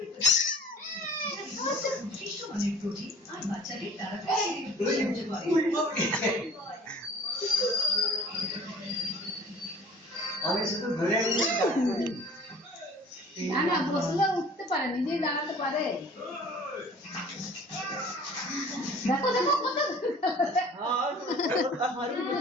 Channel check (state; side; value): normal; both; correlation 0.48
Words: আমি শুধু ধরে না না বসলে উঠতে পারে নিজেই দাঁড়াতে পারে দেখো দেখো কত